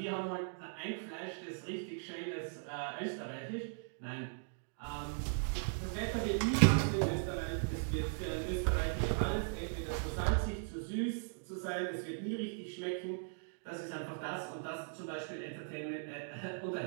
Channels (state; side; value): silent; left; digital silence